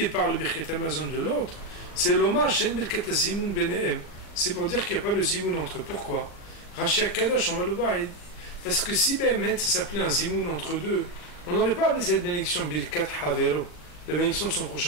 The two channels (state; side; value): late; right; 39 ms